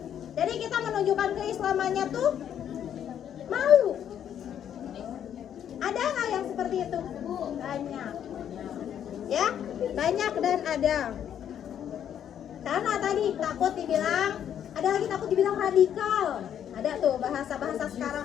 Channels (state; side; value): quieter; right; 9.5 dB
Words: Jadi kita menunjukkan keislamannya tuh malu. Ada nggak yang seperti itu? Banyak. Ya, banyak dan ada. Karena tadi takut dibilang, ada lagi takut dibilang radikal. Ada tuh bahasa-bahasa